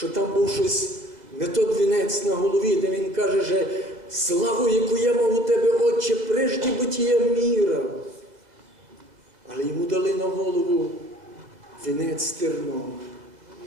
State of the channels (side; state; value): left; late; 2.0 ms